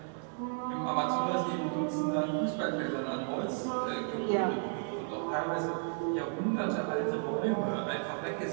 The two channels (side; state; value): left; silent; 56 dB below the other